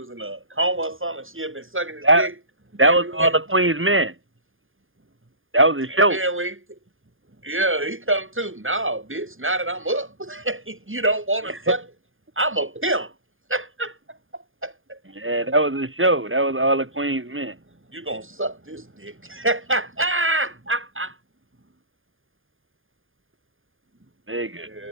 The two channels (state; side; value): late; left; 0.59 ms